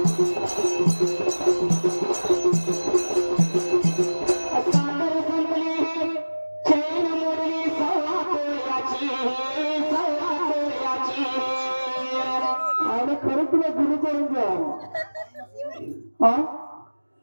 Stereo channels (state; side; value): inverted; both; correlation -1.00